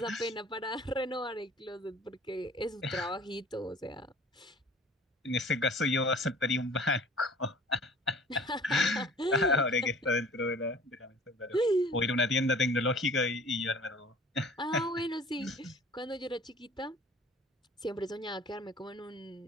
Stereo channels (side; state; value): both; normal; correlation 0.48